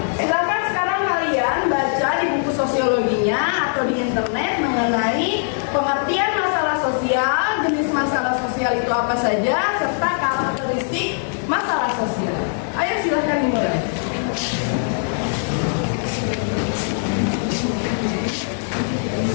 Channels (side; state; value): right; silent; 65 dB below the other